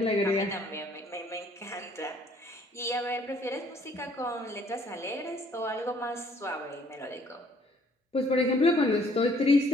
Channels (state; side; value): normal; both; correlation 0.61